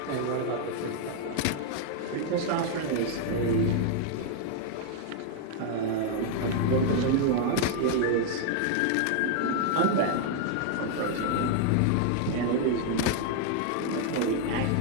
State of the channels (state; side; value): different; both; correlation 0.00